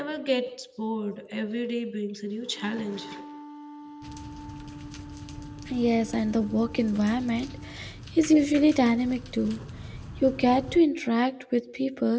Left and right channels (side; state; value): both; identical; correlation 1.00